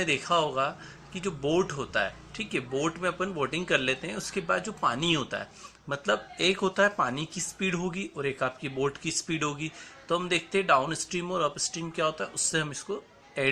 देखा होगा कि जो बोट होता है, ठीक है, बोट में अपन बोटिंग कर लेते हैं, उसके बाद जो पानी होता है, मतलब एक होता है पानी की स्पीड होगी और एक आपकी बोट की स्पीड होगी। तो हम देखते हैं डाउन स्ट्रीम और अप स्ट्रीम क्या होता है, उससे हम इसको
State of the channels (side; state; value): both; identical; correlation 1.00